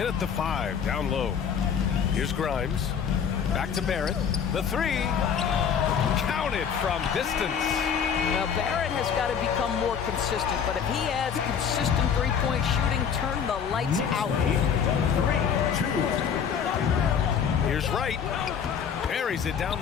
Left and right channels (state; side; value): quieter; right; 7.4 dB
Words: at the 5, down low. Here's Grimes. Back to Barrett. The 3. Counted from distance. Now, Barrett has got to become more consistent, but if he adds consistent three-point shooting, turn the lights out. 3-2. Here's Wright. Buries it down